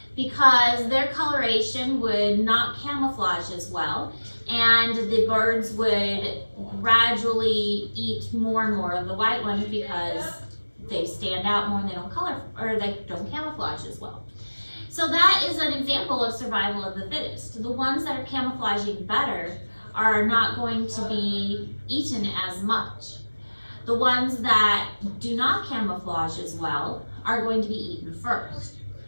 because their coloration would not camouflage as well, and the birds would gradually eat more and more of the white ones because they stand out more and they don't color, or they don't camouflage as well. So that is an example of survival of the fittest. The ones that are camouflaging better are not going to be eaten as much. The ones that do not camouflage as well are going to be eaten first.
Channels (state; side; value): inverted; both; correlation -1.00